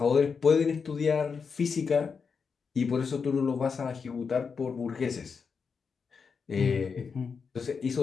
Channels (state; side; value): quieter; right; 5.6 dB